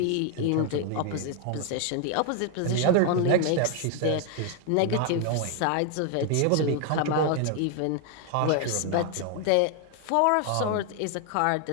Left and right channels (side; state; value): both; different; correlation 0.00